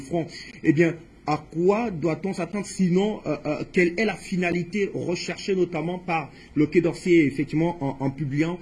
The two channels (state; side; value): identical; both; correlation 1.00